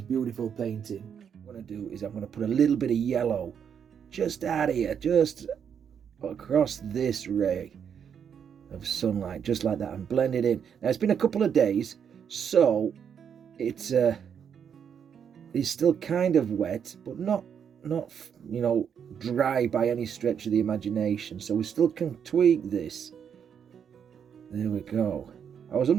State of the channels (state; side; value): quieter; left; 7.8 dB